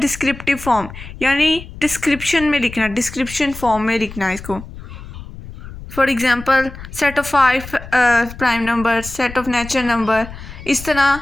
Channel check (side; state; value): left; noise; rumble, 14 dB below the sound